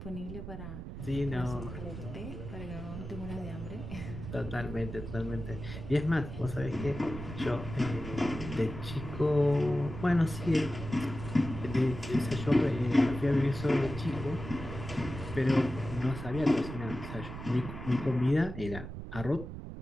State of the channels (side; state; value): right; noise; rumble, 9 dB below the sound